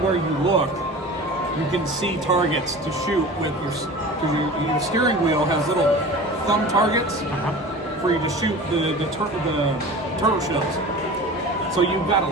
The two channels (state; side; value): normal; both; correlation 0.37